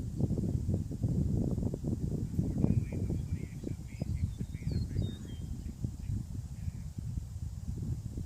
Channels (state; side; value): identical; both; correlation 1.00